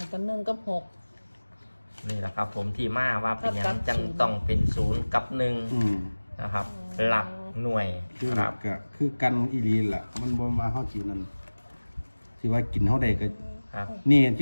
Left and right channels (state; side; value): inverted; both; correlation -1.00